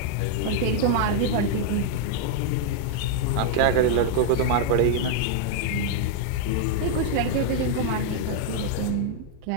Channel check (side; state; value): both; different; correlation 0.00